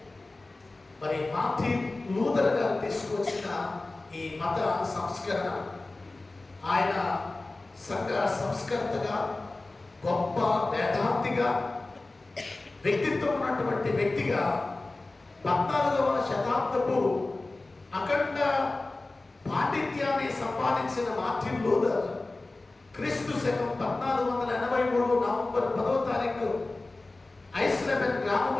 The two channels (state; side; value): quieter; right; 3.1 dB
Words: మరి మార్టిన్ లూథర్ గారు ఈ మత సంస్కరణ. ఆయన సంఘ సంస్కర్తగా, గొప్ప వేదాంతిగా, వ్యక్తిత్వం ఉన్నటువంటి వ్యక్తిగా 14వ శతాబ్దపు అఖండ పాండిత్యాన్ని సంపాదించిన మార్టిన్ లూథర్ క్రీస్తు శకం 1483 నవంబర్ 10వ తారీఖు ఐస్లెబెన్